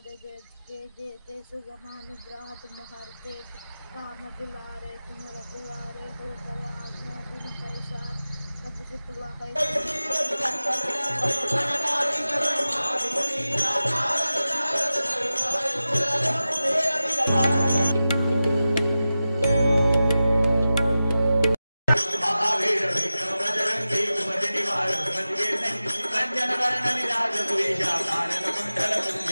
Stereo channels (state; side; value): inverted; both; correlation -0.94